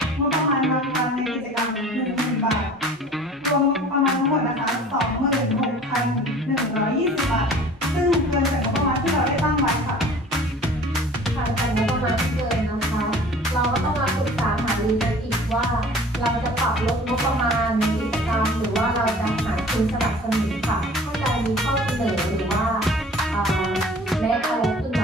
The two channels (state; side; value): normal; both; correlation 0.46